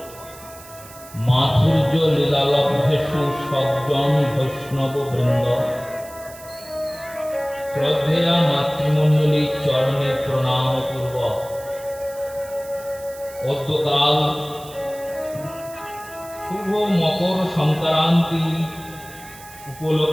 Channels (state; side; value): noise; right; hiss, 19 dB below the sound